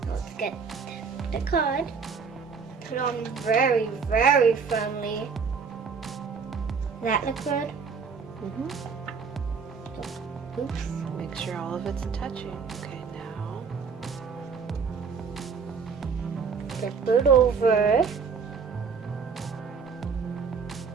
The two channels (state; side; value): quieter; left; 5.6 dB